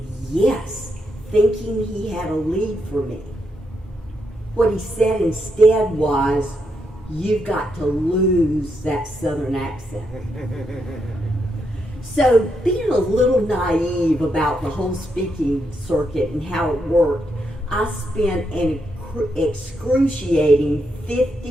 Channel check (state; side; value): normal; both; correlation 0.80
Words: yes, thinking he had a lead for me. What he said instead was, "You've got to lose that Southern accent." So being a little naive about the whole speaking circuit and how it worked, I spent an excruciating